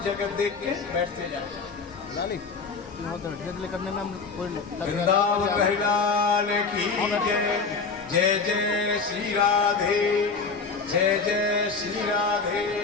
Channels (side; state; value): right; quieter; 4.7 dB